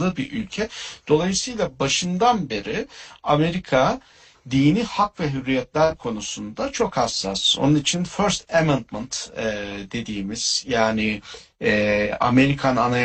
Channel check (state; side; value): identical; both; correlation 1.00